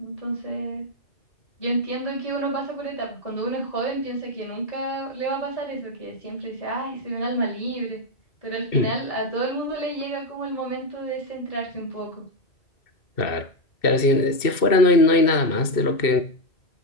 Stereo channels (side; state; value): right; late; 2.6 ms